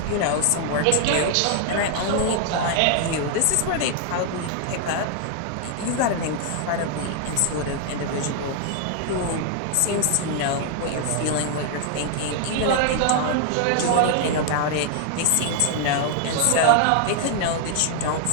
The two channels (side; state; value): both; different; correlation 0.00